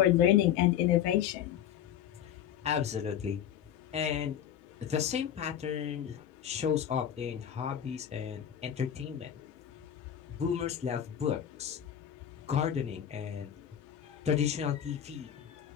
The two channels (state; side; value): quieter; right; 9.9 dB